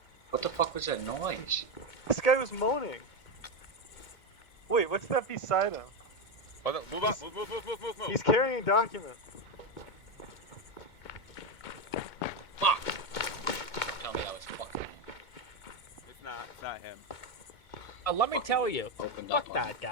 What the fuck was that noise? This guy was moaning. Wait, what's that beside him? Hold on, move up, move. He's carrying a document. Fuck! Tell me that was fucking. It's not him. let me tell you. opened Fuck up on that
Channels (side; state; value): right; late; 2.2 ms